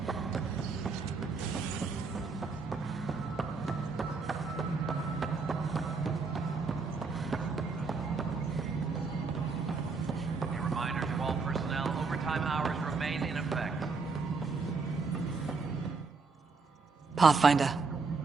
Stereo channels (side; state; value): left; quieter; 4.5 dB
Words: A reminder to all personnel, overtime hours remain in effect. Pathfinder.